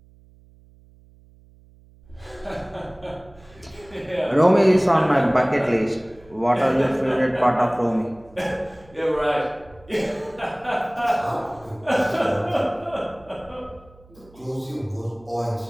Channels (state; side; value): noise; right; hum, 27 dB below the sound